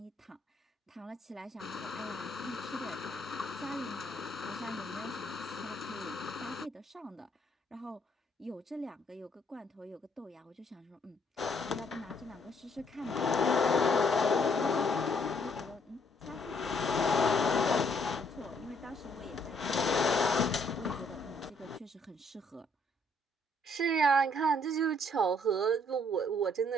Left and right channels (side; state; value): both; normal; correlation 0.67